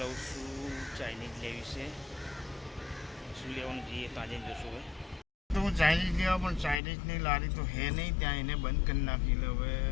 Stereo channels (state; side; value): drops out; right; at 6.8 s